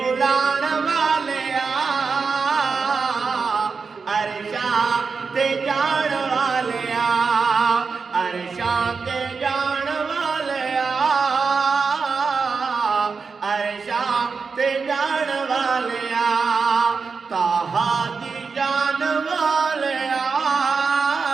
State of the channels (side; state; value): left; quieter; 5.0 dB